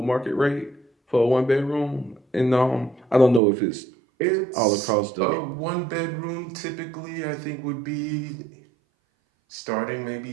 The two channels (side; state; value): left; drops out; at 3.4 s